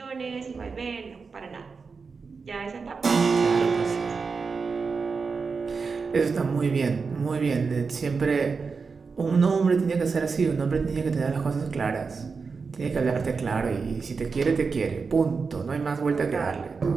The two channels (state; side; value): quieter; left; 4.9 dB